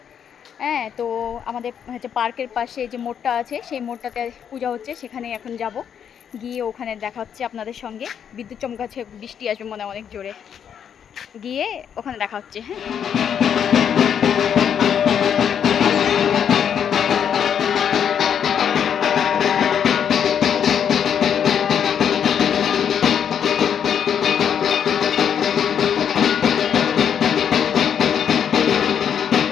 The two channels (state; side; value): quieter; right; 8.3 dB